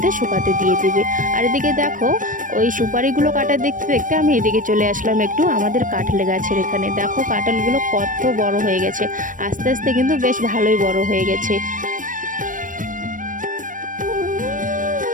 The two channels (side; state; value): left; late; 0.38 ms